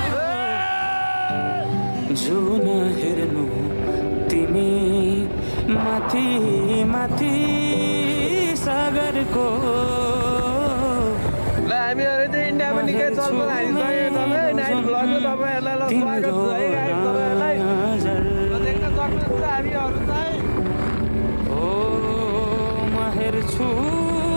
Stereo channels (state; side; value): inverted; both; correlation -1.00